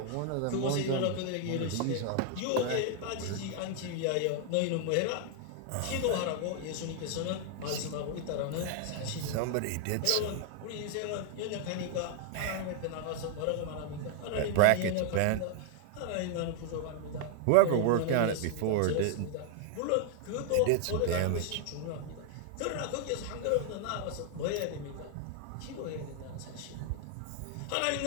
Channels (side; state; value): both; different; correlation 0.00